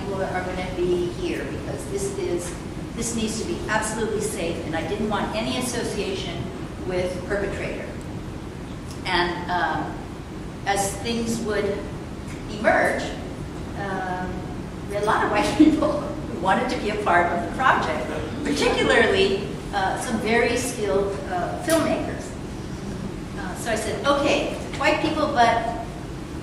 are gonna be here because this needs to be absolutely safe, and I didn't want any association with perpetrator. And as things would emerge, we had a lot of white people who wanted to be a part of the project, particularly some very skilled filmmakers. So I said, okay, white people, but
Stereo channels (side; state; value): both; identical; correlation 1.00